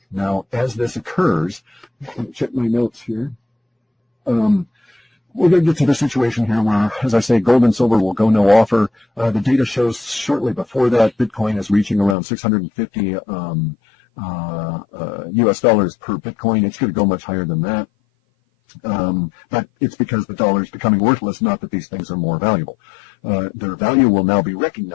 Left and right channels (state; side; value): drops out; right; at 12.2 s